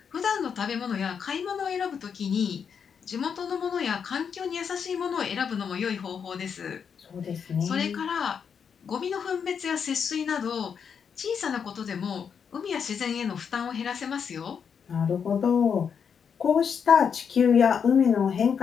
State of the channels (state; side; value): quieter; right; 6.9 dB